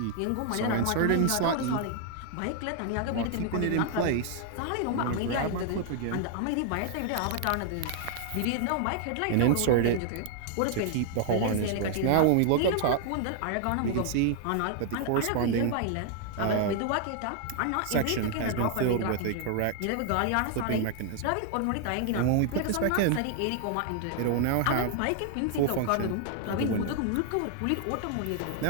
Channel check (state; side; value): different; both; correlation 0.00